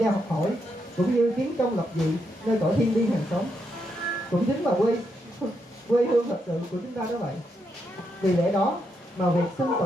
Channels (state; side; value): normal; both; correlation 0.80